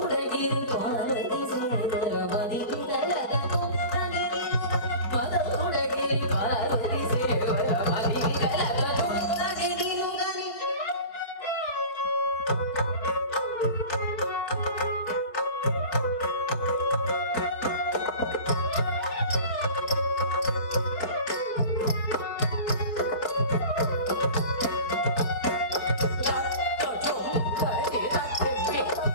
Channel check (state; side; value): late; right; 4.6 ms